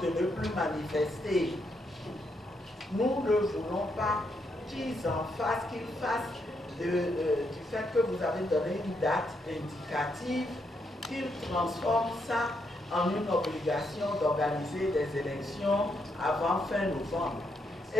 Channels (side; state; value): both; normal; correlation 0.78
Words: de ne plus manifester. Nous ne voulons pas qu'ils en fassent, qu'ils fassent du fait que vous avez donné une date indicative, qu'ils transforment ça en une obligation d'organiser des élections avant fin novembre.